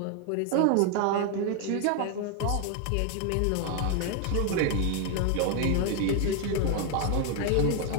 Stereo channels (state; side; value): different; both; correlation 0.00